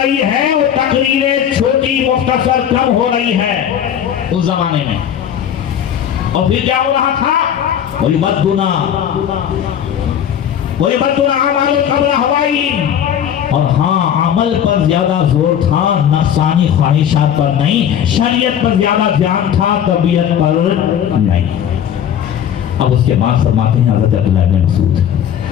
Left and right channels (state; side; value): quieter; right; 9.4 dB